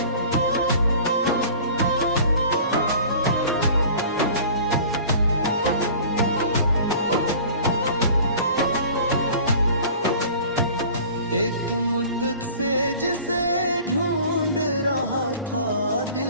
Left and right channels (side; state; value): both; inverted; correlation -0.44